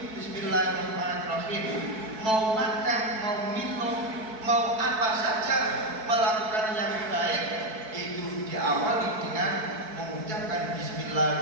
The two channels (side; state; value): left; late; 4.6 ms